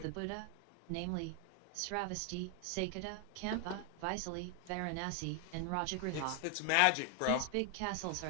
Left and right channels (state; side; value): different; both; correlation 0.00